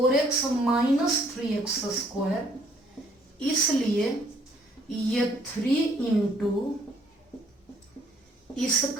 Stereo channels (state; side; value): normal; both; correlation 0.64